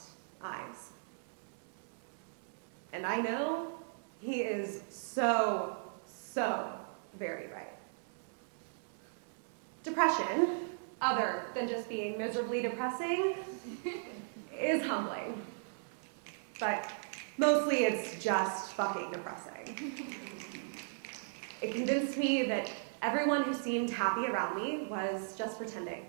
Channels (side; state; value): left; silent; 53 dB below the other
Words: eyes. And I know he is so very right. Depression, other than just being miserably depressing, is humbling. But mostly it's just fucking depressing. It convinced me that everyone who seemed happy around me was just pretending,